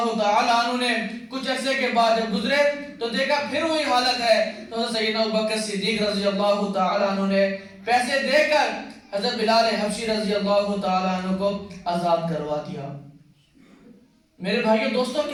تعالی عنہ نے کچھ عرصے کے بعد جب گزرے تو دیکھا پھر وہی حالت ہے. تو حضرت سیدنا ابوبکر صدیق رضی اللہ تعالی عنہ نے پیسے دے کر حضرت بلال حبشی رضی اللہ تعالی عنہ کو آزاد کروا دیا. میرے بھائیو دوستوں،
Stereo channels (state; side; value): identical; both; correlation 1.00